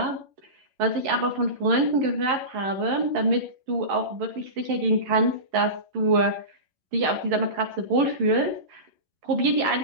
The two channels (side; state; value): left; late; 11 ms